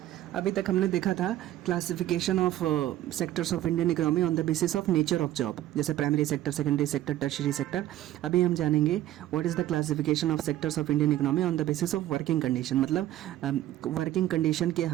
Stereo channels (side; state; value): left; quieter; 13.8 dB